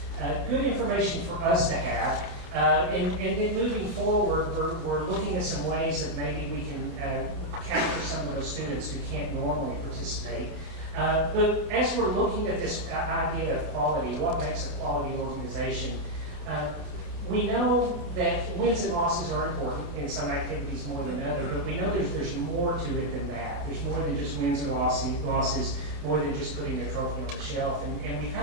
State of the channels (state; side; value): late; left; 28 ms